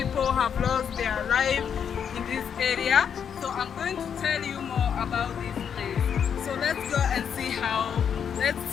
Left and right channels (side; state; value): right; quieter; 7.7 dB